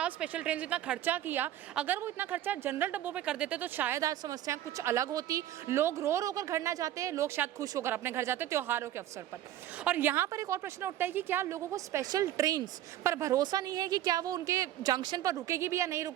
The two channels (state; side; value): quieter; left; 12.8 dB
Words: स्पेशल ट्रेन इतना खर्चा किया, अगर वो इतना खर्चा जनरल डब्बों पे कर देते तो शायद आज समस्याएं कुछ अलग होती। लोग रो कर घर ना जाते, लोग शायद खुश होकर अपने घर जाते त्योहारों के अवसर पर। और यहाँ पर एक और प्रश्न उठता है कि क्या लोगों को स्पेशल ट्रेन पर भरोसा नहीं है कि क्या वो उनके जंक्शन पर रुकेगी भी या नहीं